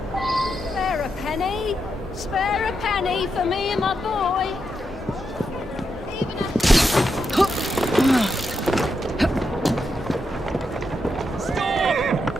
Spare a penny. Spare a penny for me and my boy. Even a... Stop!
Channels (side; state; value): both; normal; correlation 0.84